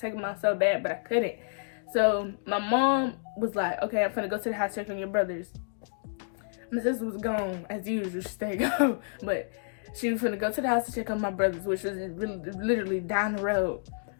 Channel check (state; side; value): silent; right; digital silence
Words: them out so bad, but I couldn't. So my mom was like, okay, I'm finna go to the house, check on your brothers. My sister was gone as usual. She stayed gone, but she was gonna go to the house to check on my brothers, which was really, literally down the road.